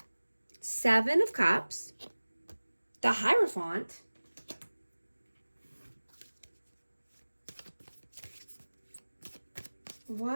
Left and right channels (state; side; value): inverted; both; correlation -1.00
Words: 7 of Cups. The Hierophant.